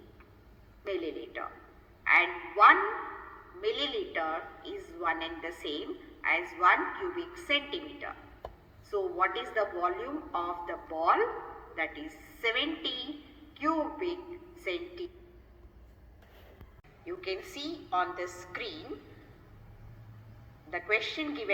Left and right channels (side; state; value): both; identical; correlation 1.00